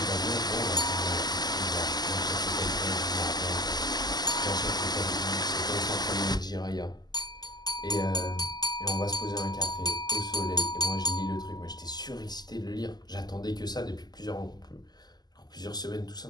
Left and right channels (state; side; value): late; right; 0.20 ms